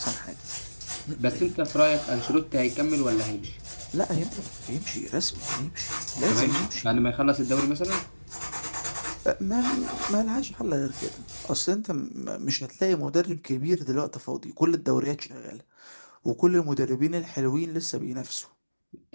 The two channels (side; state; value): both; inverted; correlation -1.00